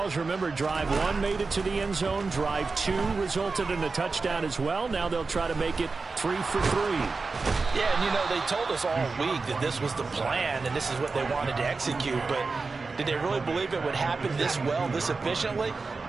remember drive 1 made it to the end zone. Drive 2 resulted in a touchdown as well. Now they'll try to make it 3 for 3. Yeah, and you know, they told us all week that this was the plan and this is what they wanted to execute, but did they really believe it would happen this well, this efficiently?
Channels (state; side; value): quieter; left; 4.1 dB